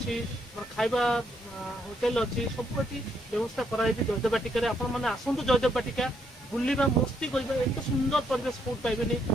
खाइबा होटेल अच्छी सब व्यवस्था कराई जयदेव बाटिका आपण मैंने आसतु जयदेव बाटिका बुलवा मस्ती करवा एत सुंदर परिवेश कौट पाइबे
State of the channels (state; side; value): normal; both; correlation 0.73